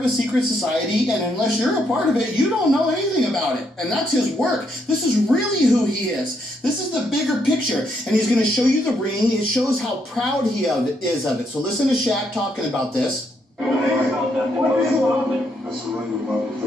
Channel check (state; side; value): normal; both; correlation 0.75